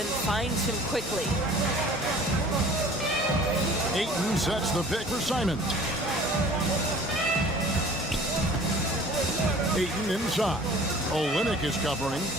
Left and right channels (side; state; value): both; normal; correlation 0.48